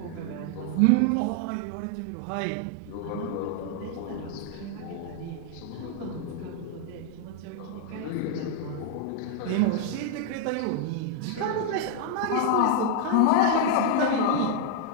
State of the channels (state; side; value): different; both; correlation 0.00